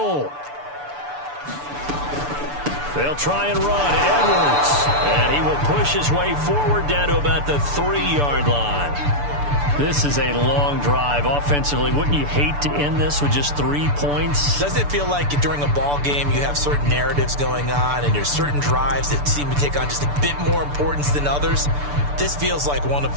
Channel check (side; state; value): left; late; 6.9 ms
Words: They'll try and run. Edwards. And he will push his way forward down to about the 3-yard line. This is a long drive offensively. Wouldn't you hate to end this with just 3 points? Doesn't it feel like during a ball game you have certain narratives going on and there's certain drives that seem to take on just a bit more importance than others? This feels like one of